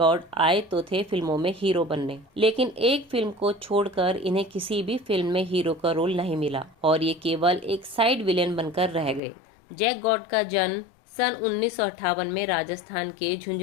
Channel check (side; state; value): right; drops out; at 9.2 s